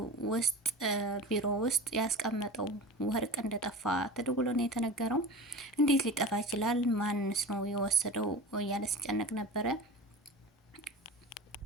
ውስጥ ቢሮ ውስጥ ያስቀመጠው ወርቅ እንደጠፋ ተደውሎ ነው የተነገረው። እንዴት ሊጠፋ ይችላል? ማንስ ነው የወሰደው? እያለ ሲጨነቅ ነበረ።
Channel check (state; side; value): normal; both; correlation 0.33